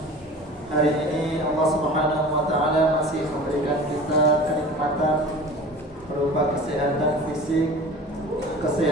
hari ini Allah Subhanahu wa taala masih memberikan kita kenikmatan berupa kesehatan fisik,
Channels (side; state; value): both; normal; correlation 0.39